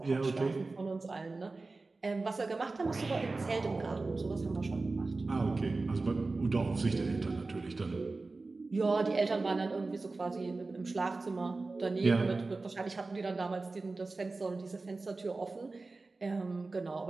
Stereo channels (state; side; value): quieter; left; 3.6 dB